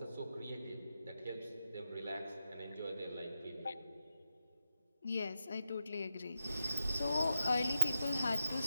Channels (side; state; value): both; inverted; correlation -0.87